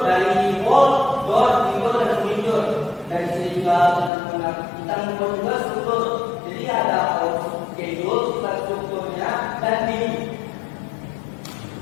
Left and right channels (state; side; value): drops out; right; at 4.1 s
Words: dari wall, door, window, dan window. Dan di sini juga kita membuat juga struktur. Jadi ada schedule, strukturnya, dan view.